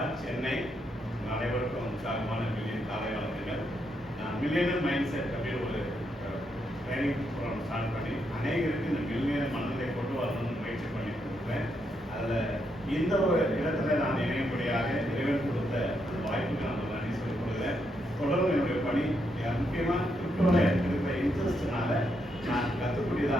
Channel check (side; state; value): both; normal; correlation 0.79